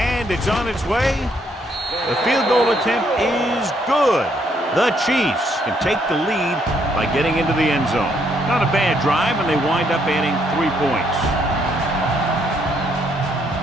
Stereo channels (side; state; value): both; normal; correlation 0.71